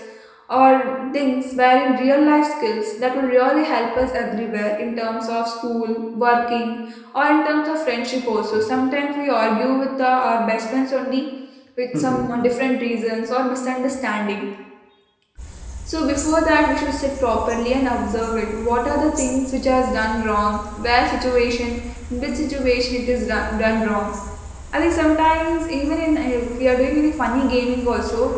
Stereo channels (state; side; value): identical; both; correlation 1.00